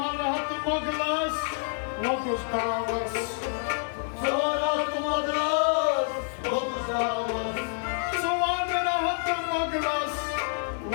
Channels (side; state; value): right; silent; digital silence